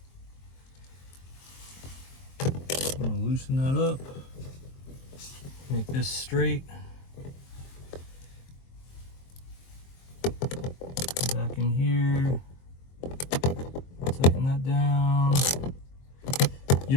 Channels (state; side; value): late; right; 23 ms